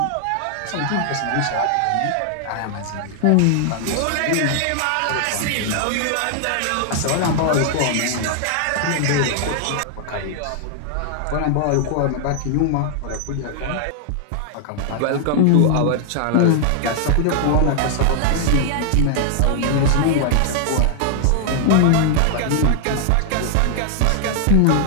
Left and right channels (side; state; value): both; different; correlation 0.00